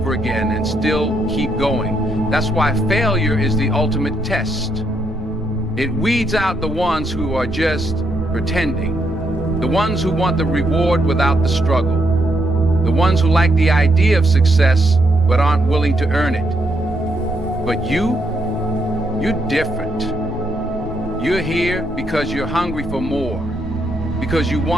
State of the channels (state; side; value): normal; both; correlation 0.76